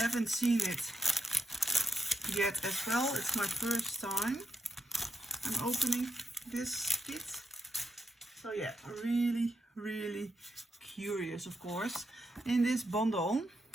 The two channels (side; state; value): both; normal; correlation 0.85